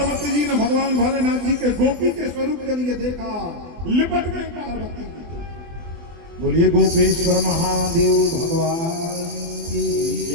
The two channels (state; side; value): late; left; 24 ms